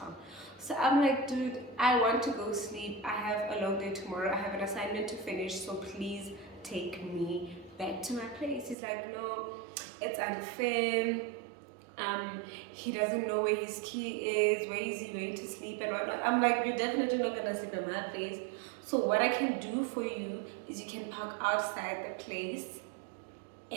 So I'm like, dude, I want to go sleep. I have a long day tomorrow. I have an assignment to finish. So please take me back to my place. He's like, no, it's unfair. He doesn't know where his key is. Where is he going to sleep and whatnot? I'm like, you're definitely not gonna sleep in my place. So what I can do for you is you can park outside the place,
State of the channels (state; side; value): drops out; left; at 8.8 s